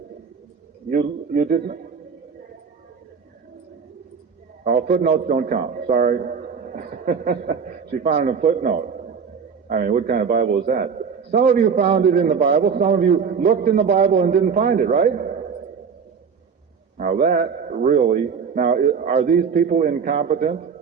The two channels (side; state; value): left; quieter; 6.2 dB